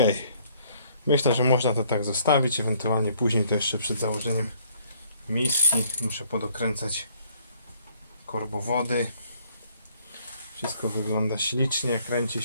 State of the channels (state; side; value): inverted; both; correlation -0.63